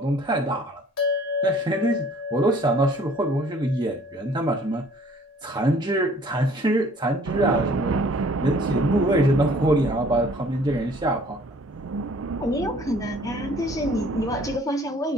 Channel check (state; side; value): normal; both; correlation 0.55